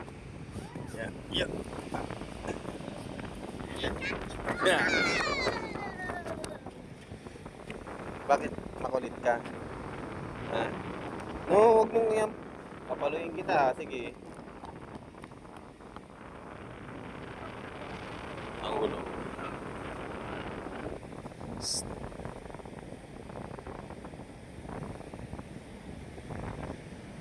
Yeah. Yeah. Bakit makulit ka? Ha? No, wag mong yan. Papaluin kita. Sige. Ang gulo.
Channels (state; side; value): identical; both; correlation 1.00